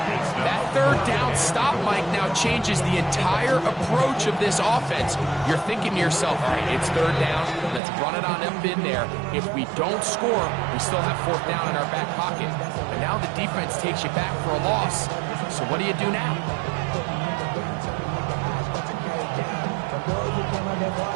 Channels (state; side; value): drops out; left; at 7.8 s